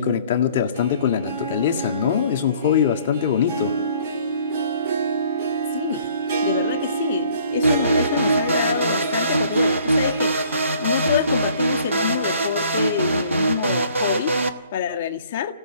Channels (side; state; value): both; inverted; correlation -0.57